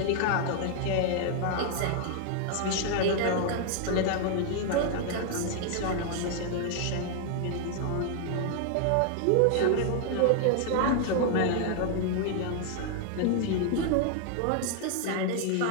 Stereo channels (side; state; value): both; different; correlation 0.00